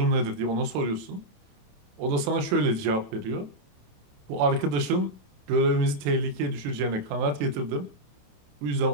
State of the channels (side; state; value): left; late; 28 ms